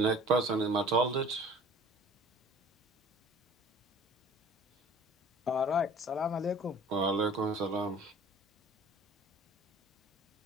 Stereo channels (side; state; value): both; normal; correlation 0.48